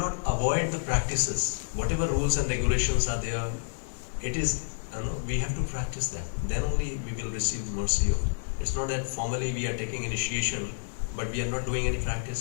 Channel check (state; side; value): silent; right; digital silence